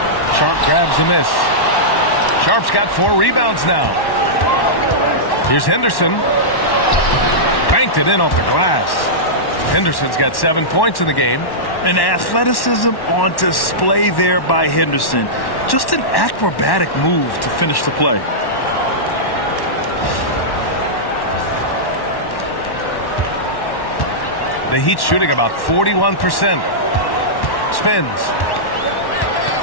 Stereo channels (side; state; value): right; late; 1.1 ms